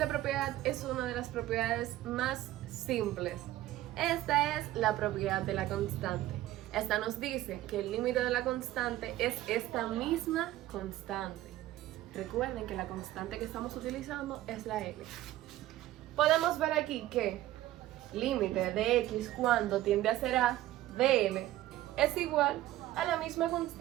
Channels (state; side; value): quieter; left; 15.0 dB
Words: propiedad es una de las propiedades más simples. Esta es la propiedad de la constante. Esta nos dice que el límite de la constante es esta misma constante. Recuerden que la constante que estamos utilizando es la L. Podemos ver aquí que límite de x cuando tiende a ser a de L es igual a la misma